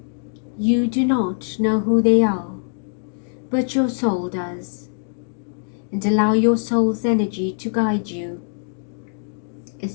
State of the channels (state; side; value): silent; right; digital silence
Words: you do not know who they are, but your soul does, and allow your soul's energy to guide you